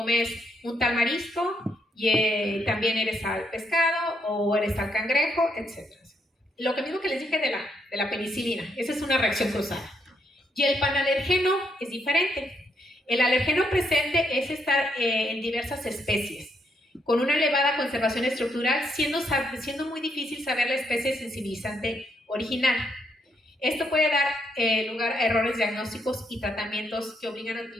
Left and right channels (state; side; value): normal; both; correlation 0.76